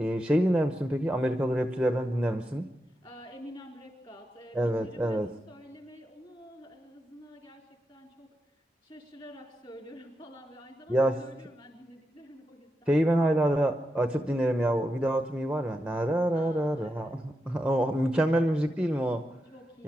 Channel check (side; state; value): both; normal; correlation 0.87